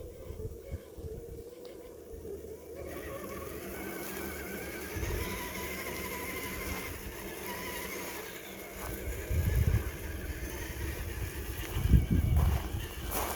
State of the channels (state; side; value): identical; both; correlation 1.00